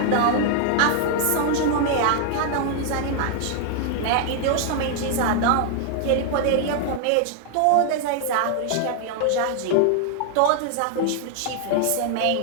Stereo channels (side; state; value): both; different; correlation 0.00